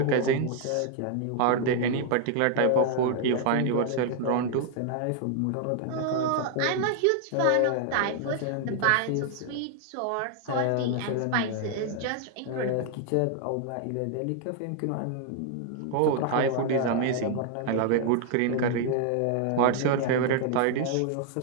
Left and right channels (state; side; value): different; both; correlation 0.00